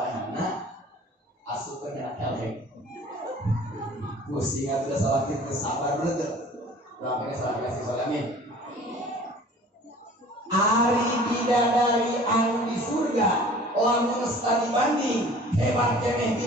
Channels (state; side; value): normal; both; correlation 0.47